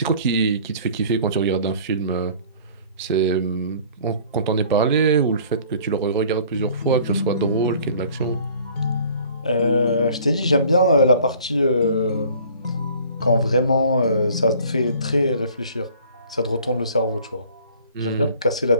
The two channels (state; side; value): inverted; both; correlation -0.51